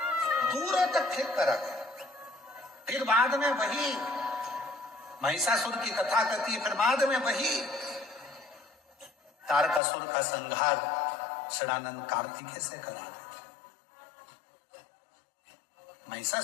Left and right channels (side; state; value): right; drops out; at 9.8 s